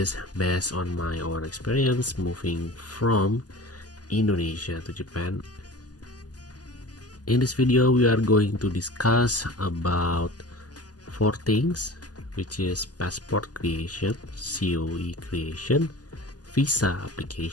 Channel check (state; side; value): late; right; 0.68 ms